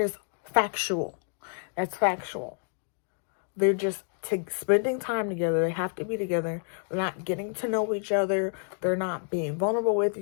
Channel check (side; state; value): right; silent; 59 dB below the other